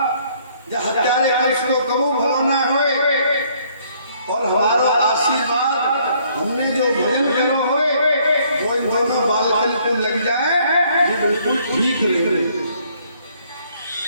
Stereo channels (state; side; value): inverted; both; correlation -0.64